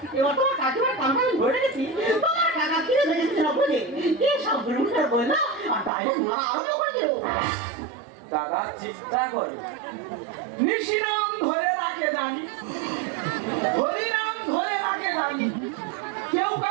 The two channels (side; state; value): left; drops out; at 5.9 s